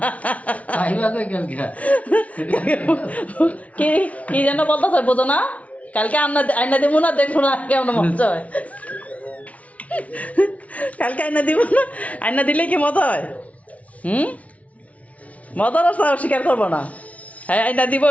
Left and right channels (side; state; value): right; late; 0.067 ms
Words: খাইবা কই কালকে? কি কি যেন বলতেছে বোঝো না। কালকে আইনা দিব না, দেখবো না কেমন মজা হয়। কালকে আইনা দিব না, আইনা দিলে কি মজা হয়? মজার রাস্তা স্বীকার করবো না। হ্যাঁ আইনা দিব